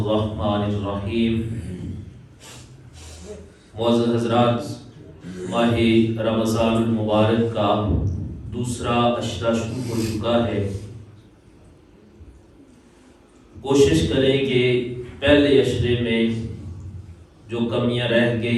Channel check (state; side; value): identical; both; correlation 1.00